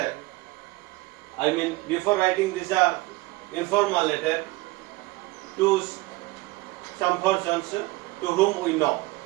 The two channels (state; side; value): quieter; left; 21.1 dB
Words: before writing this informal letter to some persons to whom we know.